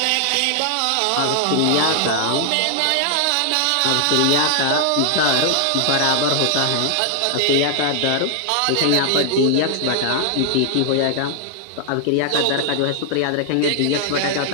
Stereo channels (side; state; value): both; different; correlation 0.00